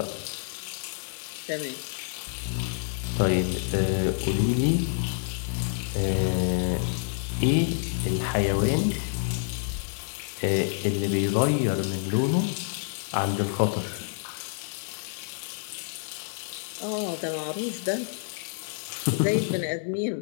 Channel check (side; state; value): right; silent; 59 dB below the other